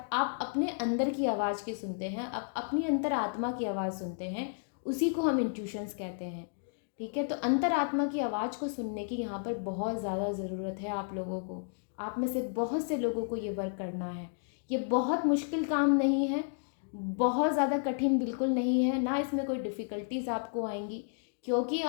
आप अपने अंदर की आवाज़ की सुनते हैं, अपनी अंतरात्मा की आवाज़ सुनते हैं, उसी को हम इंट्यूशंस कहते हैं। ठीक है, तो अंतरात्मा की आवाज़ को सुनने की यहाँ पर बहुत ज़्यादा ज़रूरत है आप लोगों को। आप में से बहुत से लोगों को ये वर्क करना है। ये बहुत मुश्किल काम नहीं है, बहुत ज़्यादा कठिन बिल्कुल नहीं है, ना इसमें कोई डिफ़िकल्टीज आपको आएंगी, क्योंकि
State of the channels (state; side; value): silent; right; digital silence